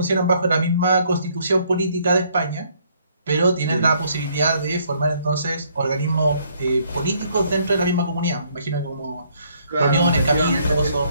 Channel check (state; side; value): inverted; both; correlation -0.66